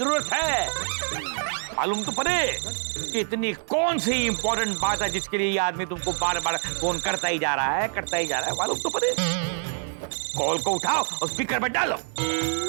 है। मालूम तो पड़े कि इतनी कौन सी इंपॉर्टेंट बात है जिसके लिए ये आदमी तुमको बार बार फोन करता ही जा रहा है, करता ही जा रहा है। मालूम तो पड़े। कॉल को उठाओ और स्पीकर पे डालो,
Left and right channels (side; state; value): left; silent; 61 dB below the other